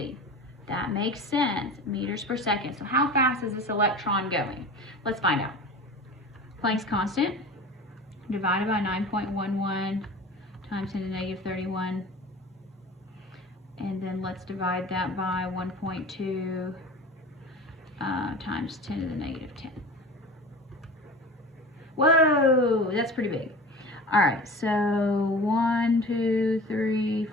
That makes sense. Meters per second. So how fast is this electron going? Let's find out. Planck's constant divided by 9.11 times 10 to the negative 31. And then let's divide that by 1.2 times 10 to the negative 10. Whoa, that's pretty big. All right, so 1, 2, 3,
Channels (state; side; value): normal; both; correlation 0.36